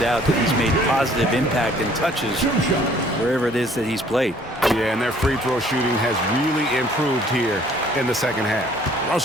that he's made positive impact and touches wherever it is that he's played. Yeah, and their free throw shooting has really improved here in the second half.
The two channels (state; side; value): normal; both; correlation 0.58